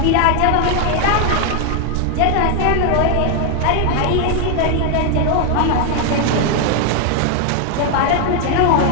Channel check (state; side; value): different; both; correlation 0.00